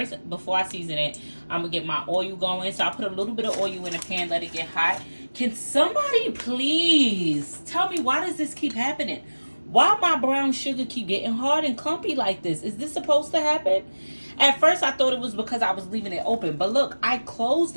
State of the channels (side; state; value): both; inverted; correlation -1.00